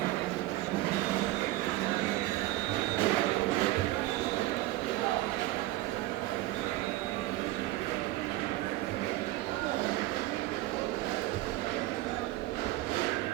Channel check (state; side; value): quieter; left; 17.4 dB